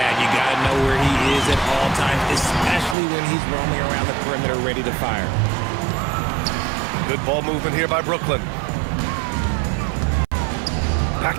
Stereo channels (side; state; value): left; drops out; at 3.0 s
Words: you got to know where he is at all times, especially when he's roaming around the perimeter ready to fire. Good ball movement here by Brooklyn.